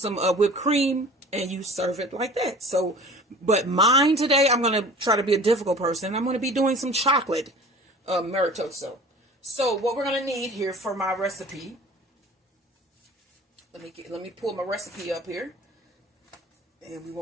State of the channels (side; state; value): both; normal; correlation 0.43